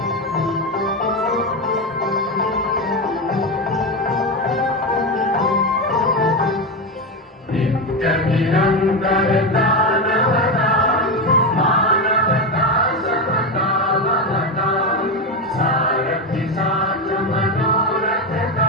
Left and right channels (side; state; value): both; normal; correlation 0.13